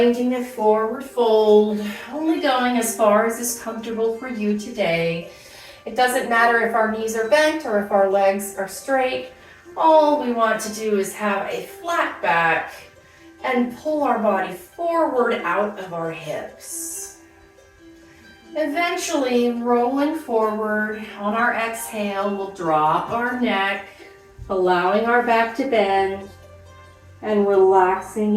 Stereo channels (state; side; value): identical; both; correlation 1.00